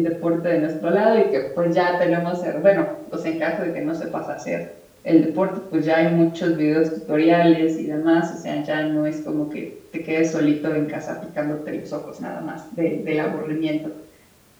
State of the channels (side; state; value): both; identical; correlation 1.00